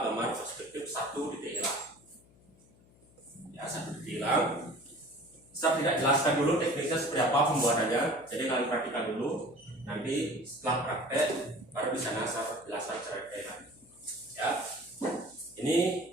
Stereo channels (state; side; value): noise; left; hum, 28 dB below the sound